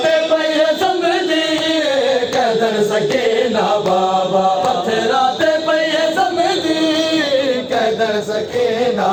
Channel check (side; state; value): both; identical; correlation 1.00